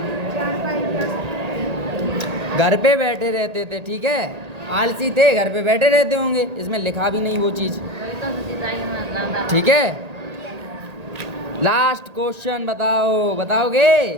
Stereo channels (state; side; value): late; left; 1.8 ms